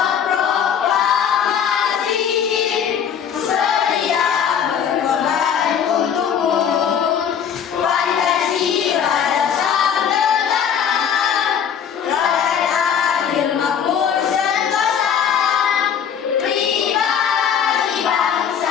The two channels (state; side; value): quieter; right; 8.1 dB